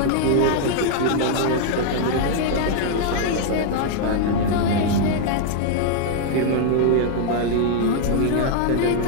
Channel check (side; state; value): both; different; correlation -0.01